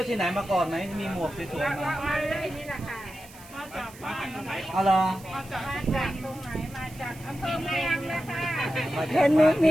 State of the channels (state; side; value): noise; right; hiss, 20 dB below the sound